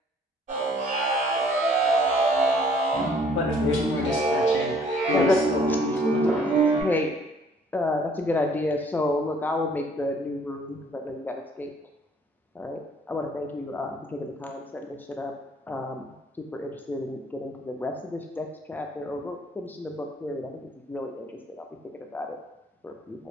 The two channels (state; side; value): normal; both; correlation 0.59